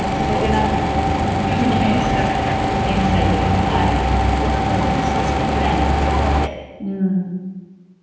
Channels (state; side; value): identical; both; correlation 1.00